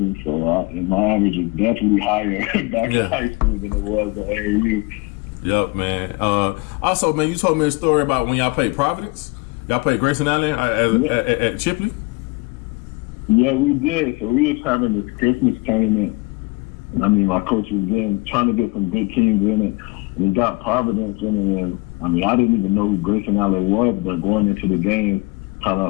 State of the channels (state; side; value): quieter; right; 25.5 dB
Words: So and my average is definitely higher back in high school than it was at AAU. Yep, man. Also, man, you told me a story about when y'all played Providence. Y'all played Grayson Allen at Chipley? Yeah, we did. So we was having this Christmas tournament. I mean, my coach was trying to get some good teams in it. And he got Providence in it. And, I mean, I didn't even know who Grayson Allen was, but going into the game, kind